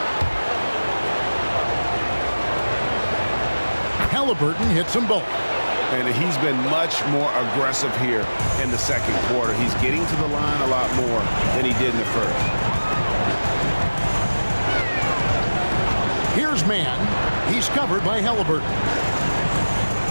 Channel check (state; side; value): inverted; both; correlation -1.00